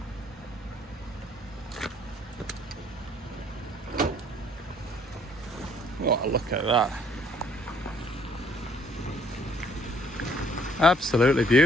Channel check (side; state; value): both; normal; correlation 0.63